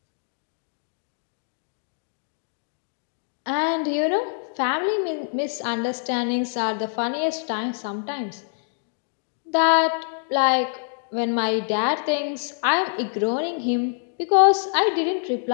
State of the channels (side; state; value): right; silent; digital silence